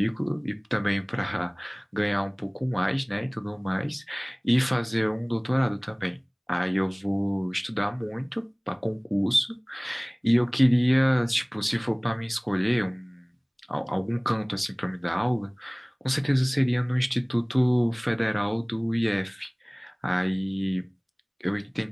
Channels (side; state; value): both; identical; correlation 1.00